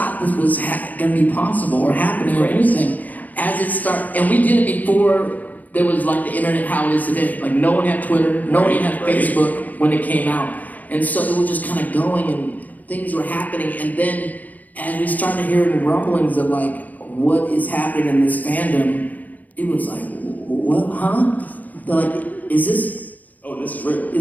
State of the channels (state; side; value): late; right; 0.080 ms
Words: this was gonna be possible or happening or anything. As it started, and we did it before there was like the internet how it is today. Like no one had Twitter, no one had Facebook when it came out. And so it was just kind of going and things were happening. And then as we started hearing rumblings of like what is happening in this fandom, it was like, what, huh? They're like, is this real.